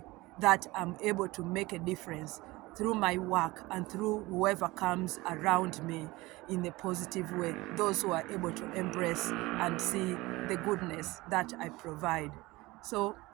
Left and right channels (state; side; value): quieter; left; 20.8 dB